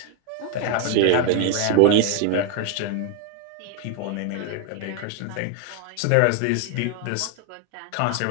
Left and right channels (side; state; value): both; different; correlation 0.01